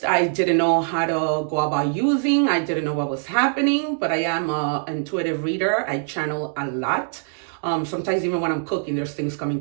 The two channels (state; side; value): silent; left; 63 dB below the other